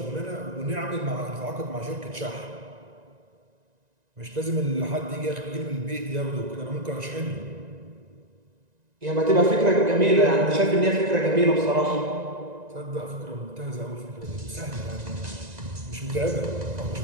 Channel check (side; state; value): left; late; 1.9 ms